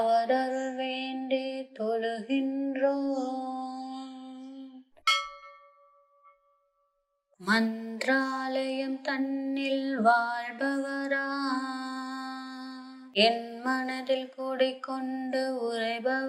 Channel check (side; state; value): both; identical; correlation 1.00